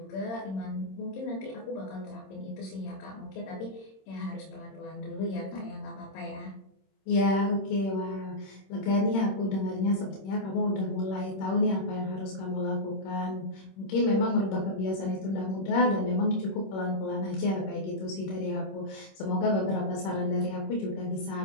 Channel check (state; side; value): late; right; 26 ms